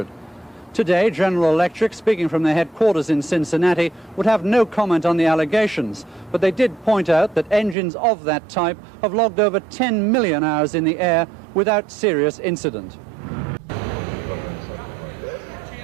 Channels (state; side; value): drops out; left; at 7.8 s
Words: Today, General Electric, speaking from their headquarters in Cincinnati, would have no comment on the allegations, but they did point out that engines of that type have logged over 10 million hours in the air without serious incident.